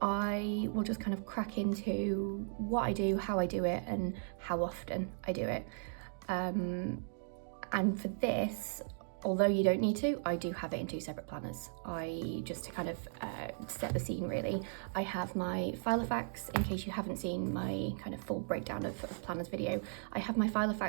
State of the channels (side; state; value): left; silent; digital silence